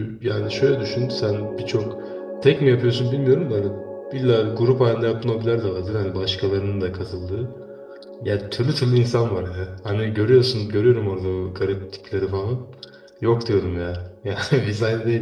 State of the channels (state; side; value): identical; both; correlation 1.00